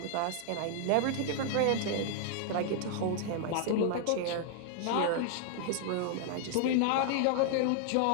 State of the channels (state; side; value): different; both; correlation 0.00